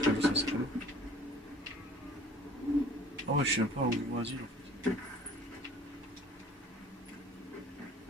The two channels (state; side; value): normal; both; correlation 0.49